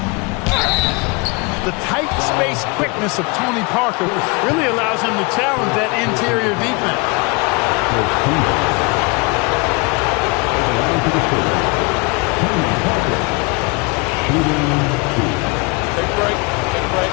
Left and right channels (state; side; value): quieter; right; 28.2 dB